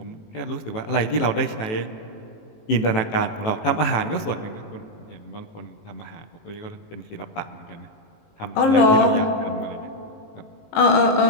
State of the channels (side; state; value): right; late; 19 ms